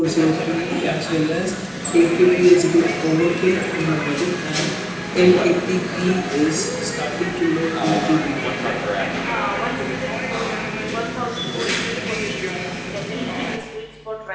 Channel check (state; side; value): identical; both; correlation 1.00